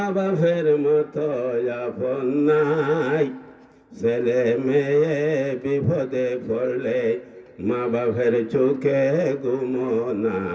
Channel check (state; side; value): identical; both; correlation 1.00